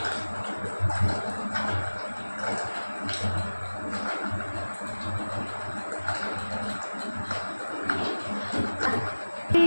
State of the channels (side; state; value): both; inverted; correlation -1.00